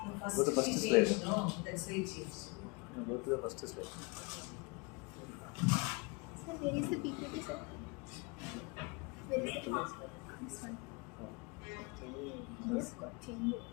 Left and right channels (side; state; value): right; quieter; 29.2 dB